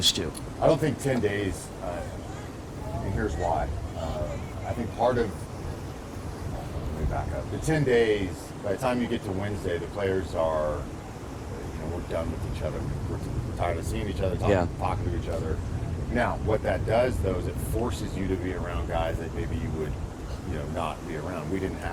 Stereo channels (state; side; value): identical; both; correlation 1.00